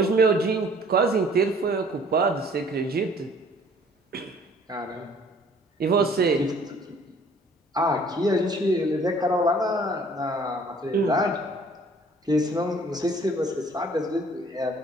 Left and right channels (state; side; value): normal; both; correlation 0.56